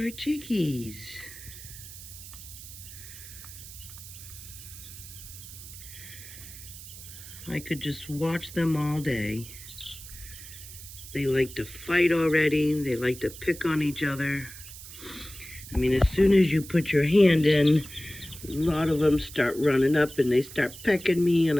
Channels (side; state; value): right; noise; hiss, 14 dB below the sound